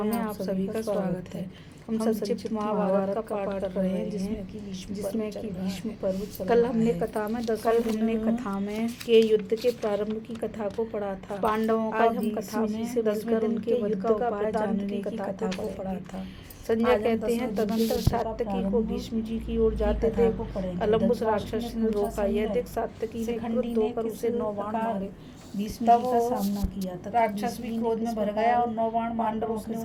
में आप सभी का स्वागत है। हम संक्षिप्त महाभारत का पाठ कर रहे हैं जिसमें कि भीष्म पर्व। कल हमने कथा में के युद्ध के प्रारंभ की कथा को पढ़ा था। पांडवों का हम कथा में से बचकर उनके युद्ध का उपाय जानने की कथा को पढ़ा था। संजय कहते हैं तदंतर सात्यकी को भीष्म जी की ओर जाते थे अलम्बुस राक्षस ने रोका। यह देख सात्यकी ने क्रुद्ध होकर उसे 9 बाण मारे। भीष्म जी का सामना किया तथा राक्षस भी क्रोध में भर गया और 9 बाण पांडवों के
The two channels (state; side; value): identical; both; correlation 1.00